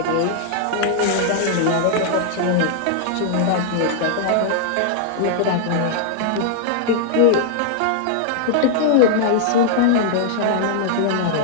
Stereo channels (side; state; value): both; different; correlation -0.01